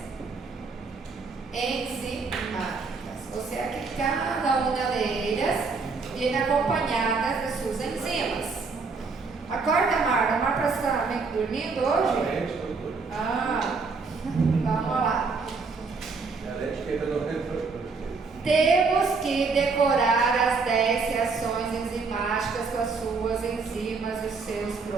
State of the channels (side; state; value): left; quieter; 4.5 dB